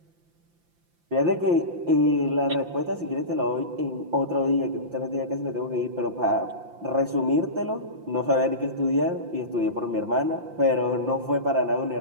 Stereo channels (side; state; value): left; late; 5.8 ms